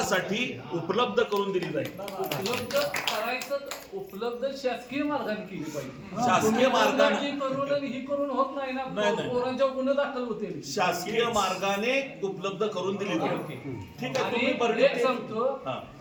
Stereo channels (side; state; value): both; identical; correlation 1.00